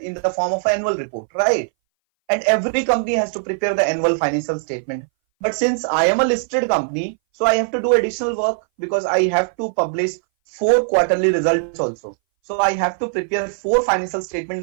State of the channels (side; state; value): left; silent; 61 dB below the other